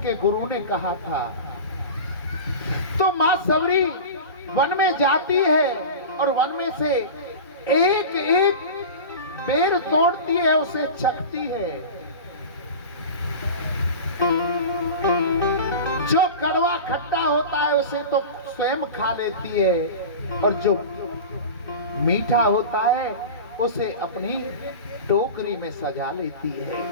गुरु ने कहा था। तो मां सबरी वन में जाती है और वन में से एक एक बेर तोड़ती है, उसे चखती है। जो कड़वा खट्टा होता है उसे तो स्वयं खा लेती है, और जो मीठा होता है उसे अपनी टोकरी में सजा लेती है।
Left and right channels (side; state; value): both; inverted; correlation -0.30